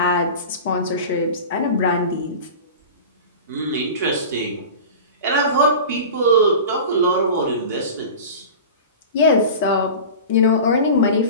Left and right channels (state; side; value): inverted; both; correlation -0.33